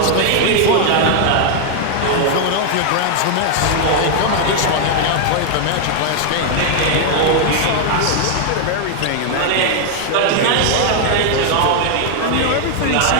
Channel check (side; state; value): both; different; correlation 0.00